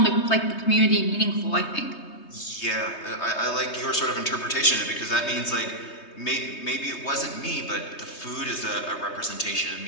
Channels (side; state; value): right; late; 3.2 ms